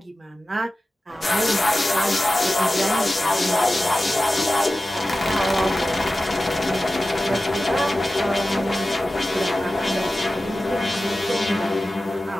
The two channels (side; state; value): both; normal; correlation 0.95